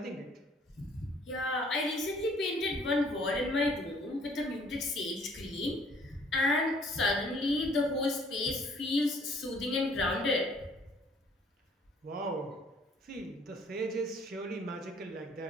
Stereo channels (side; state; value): both; normal; correlation 0.59